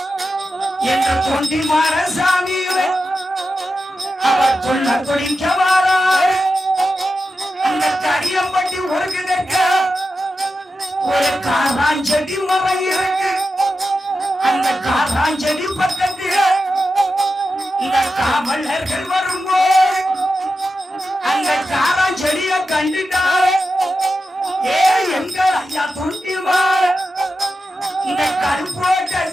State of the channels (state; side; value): normal; both; correlation 0.90